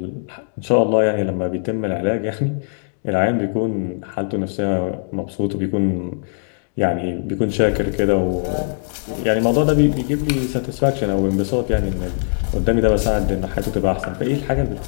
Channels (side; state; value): right; silent; digital silence